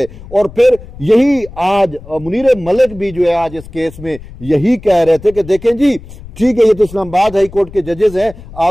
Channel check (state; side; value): noise; left; rumble, 17 dB below the sound